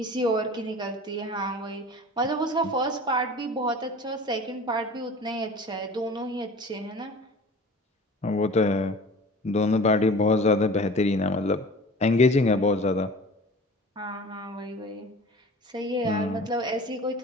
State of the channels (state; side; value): normal; both; correlation 0.41